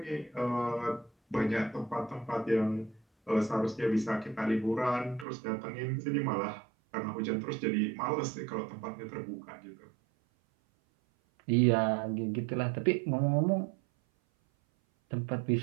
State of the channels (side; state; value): left; drops out; at 5.2 s